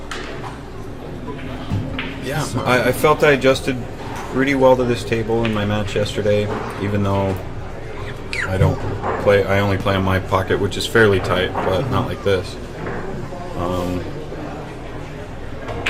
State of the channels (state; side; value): identical; both; correlation 1.00